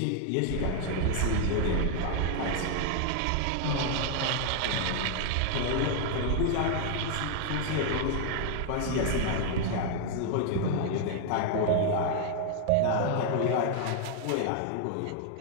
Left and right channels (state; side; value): different; both; correlation 0.00